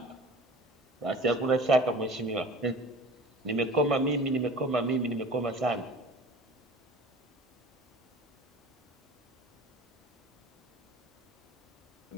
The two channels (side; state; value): both; normal; correlation 0.41